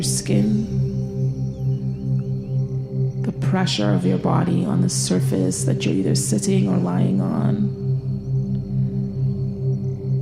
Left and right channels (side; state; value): both; identical; correlation 1.00